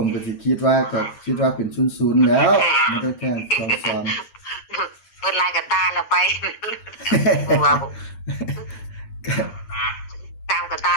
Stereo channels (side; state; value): right; late; 8.7 ms